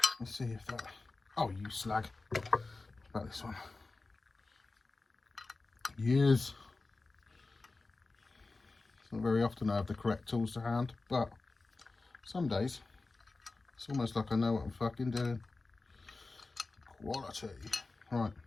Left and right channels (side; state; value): right; quieter; 3.6 dB